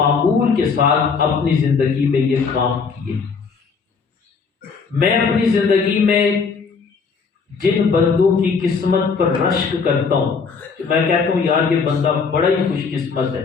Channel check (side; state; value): right; quieter; 5.3 dB